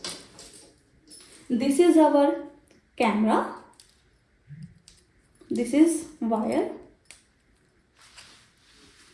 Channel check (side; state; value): both; identical; correlation 1.00